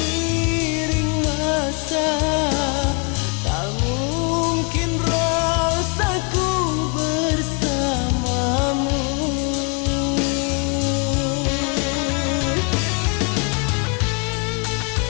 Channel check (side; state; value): right; quieter; 35.3 dB